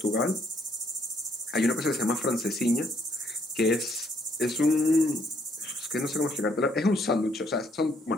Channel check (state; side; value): normal; both; correlation 0.68